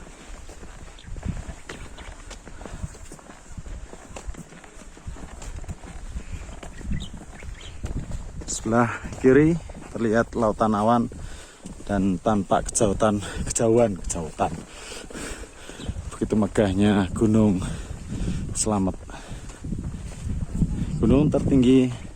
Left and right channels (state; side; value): identical; both; correlation 1.00